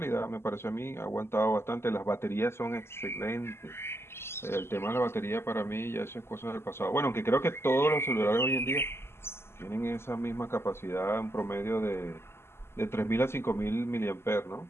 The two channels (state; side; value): late; right; 0.12 ms